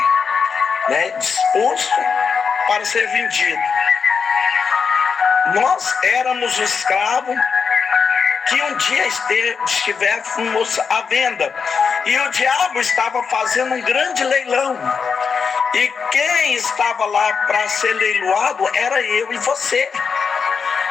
disposto para ser vendido. Nós éramos o escravo que um dia estivéssemos à venda. E o diabo estava fazendo um grande leilão. E quem estava lá para ser leiloado era eu e você.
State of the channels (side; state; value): right; quieter; 5.8 dB